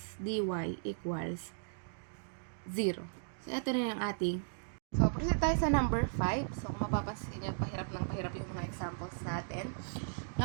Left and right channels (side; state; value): left; silent; digital silence